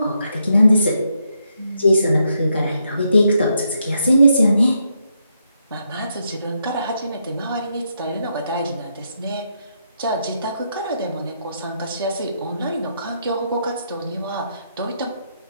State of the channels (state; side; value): inverted; both; correlation -0.79